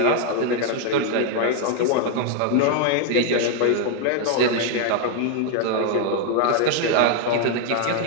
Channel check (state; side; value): different; both; correlation 0.01